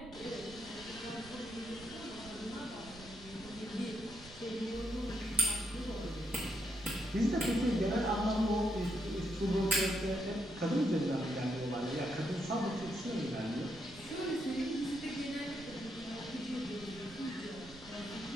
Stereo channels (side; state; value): right; noise; rumble, 19 dB below the sound